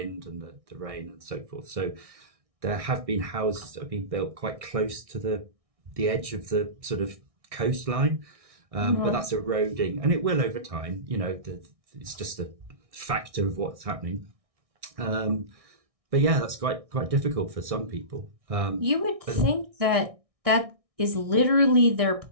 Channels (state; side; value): late; left; 1.6 ms